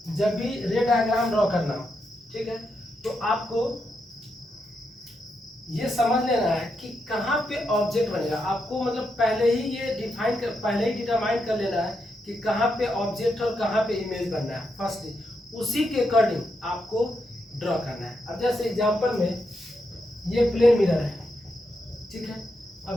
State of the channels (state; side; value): normal; both; correlation 0.83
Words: जब भी रे डायग्राम ड्रॉ करना हो, ठीक है, तो आपको ये समझ लेना है कि कहाँ पे ऑब्जेक्ट बनेगा। आपको मतलब पहले ही ये डिटरमाइन कर लेना है कि कहाँ पे ऑब्जेक्ट और कहाँ पे इमेज बनना है फर्स्ट, उसी के अकॉर्डिंग आपको ड्रॉ करना है। अब जैसे एग्जांपल में ये प्लेन मिरर है, ठीक है,